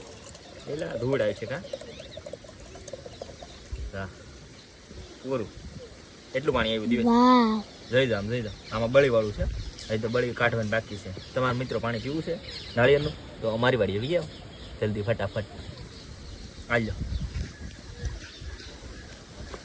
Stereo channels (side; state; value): both; identical; correlation 1.00